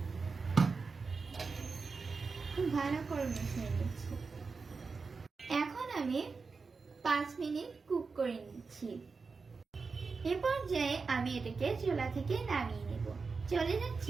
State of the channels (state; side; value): quieter; left; 4.6 dB